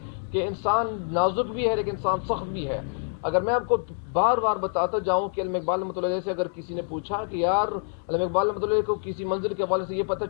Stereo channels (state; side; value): silent; right; digital silence